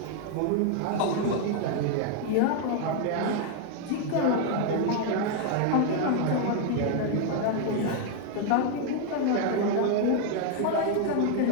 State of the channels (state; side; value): different; both; correlation 0.01